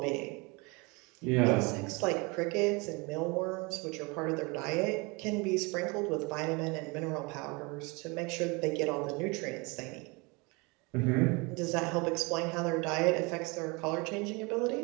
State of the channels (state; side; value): quieter; left; 27.8 dB